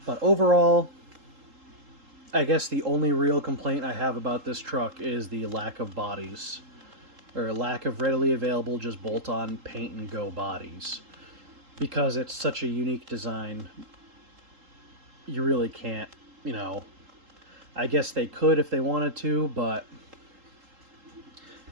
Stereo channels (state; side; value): late; left; 3.8 ms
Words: But overall, I guess the only real complaint I have about this truck is the lack of bodies, or lack of readily available just bolt-on paint and go bodies. Because it's such a unique design, you really can't, you know, I guess they could if they wanted to, but